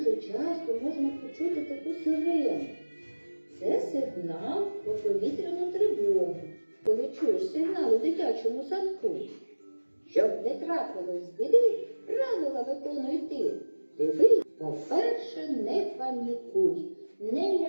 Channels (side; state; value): both; inverted; correlation -1.00